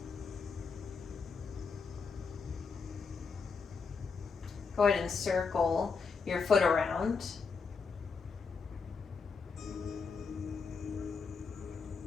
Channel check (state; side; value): quieter; right; 5.1 dB